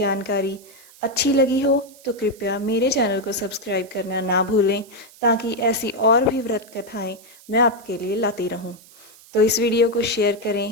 अच्छी लगी हो तो कृपया मेरे चैनल को सब्सक्राइब करना ना भूलें, ताकि ऐसी और भी व्रत कथाएं मैं आपके लिए लाती रहूं। तो इस वीडियो को शेयर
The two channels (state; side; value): noise; right; hiss, 23 dB below the sound